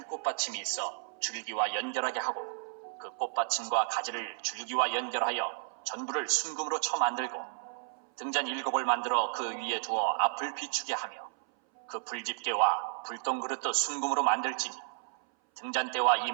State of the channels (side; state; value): left; silent; 56 dB below the other